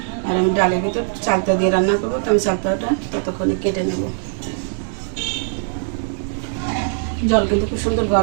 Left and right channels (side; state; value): left; silent; digital silence